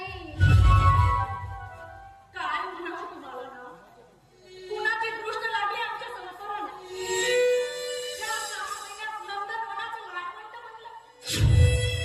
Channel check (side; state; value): both; identical; correlation 1.00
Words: काय म्हणावं तुम्हाला ना? कुणाची दृष्ट लागली आमच्या संसाराला? या 6 महिन्यात नंदनवनाचं लाडवंत बनलं.